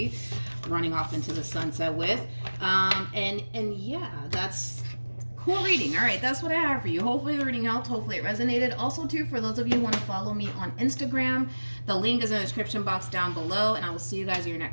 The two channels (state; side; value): inverted; both; correlation -1.00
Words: running off into the sunset with. And yeah, that's cool reading. All right, that's what I have for you. Hopefully the reading helped. Hopefully it resonated. Also, too, for those of you who want to follow me on Instagram, the link is in the description box down below, and I will see you guys in your